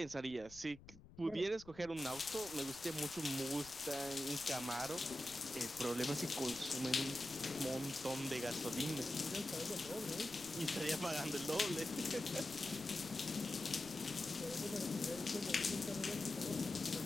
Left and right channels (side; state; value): left; noise; rumble, 20 dB below the sound